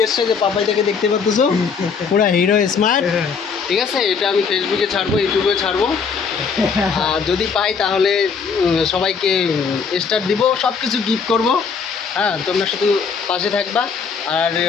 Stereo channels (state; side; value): quieter; right; 5.7 dB